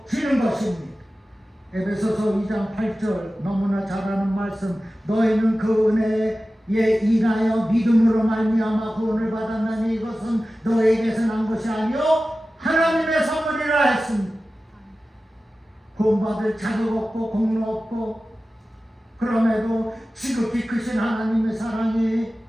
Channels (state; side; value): normal; both; correlation 0.95